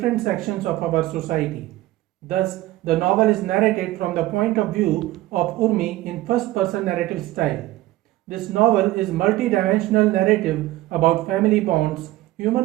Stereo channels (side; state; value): left; quieter; 16.8 dB